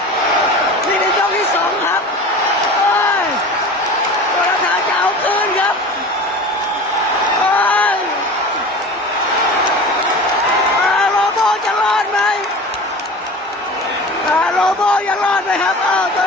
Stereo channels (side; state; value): both; normal; correlation 0.36